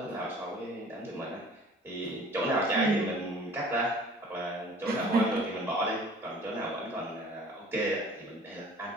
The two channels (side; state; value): both; normal; correlation 0.49